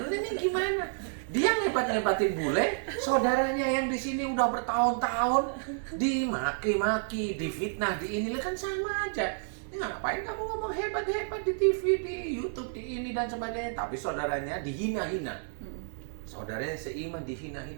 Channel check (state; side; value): silent; left; 58 dB below the other